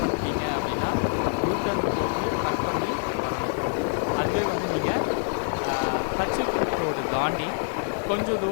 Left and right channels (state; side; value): silent; right; digital silence